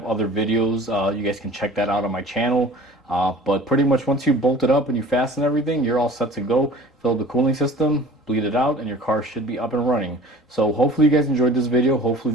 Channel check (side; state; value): both; normal; correlation 0.45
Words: other videos. You guys can check that out on my channel. But pretty much once you bolt it up and you fasten everything, you're all set to go. Fill the cooling system, bleed it out, and your car should be up and running. So hopefully you guys enjoyed this video. Hopefully